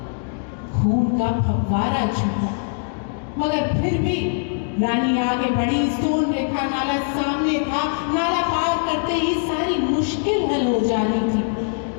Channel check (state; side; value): silent; right; digital silence